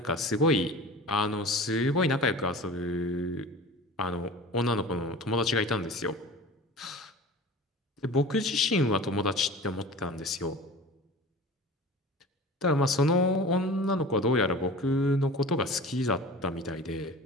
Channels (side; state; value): both; normal; correlation 0.38